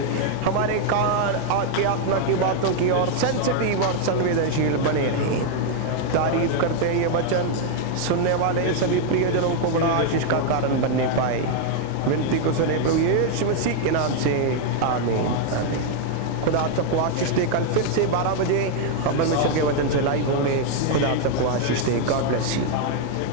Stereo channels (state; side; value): different; both; correlation 0.00